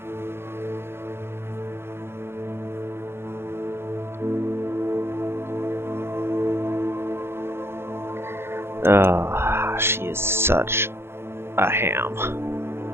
She is such a ham.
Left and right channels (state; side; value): late; left; 0.12 ms